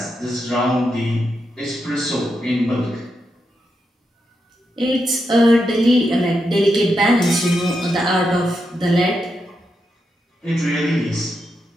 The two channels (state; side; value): normal; both; correlation 0.84